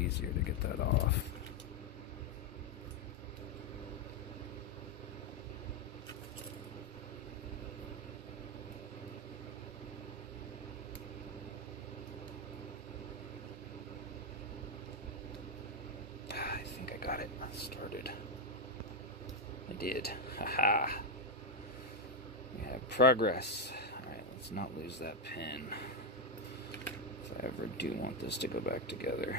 to get that off. I think I got it started. I did. Haha. We have progress. Alright, let's not lose that pin. If I ever do want this to go back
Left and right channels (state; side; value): normal; both; correlation 0.05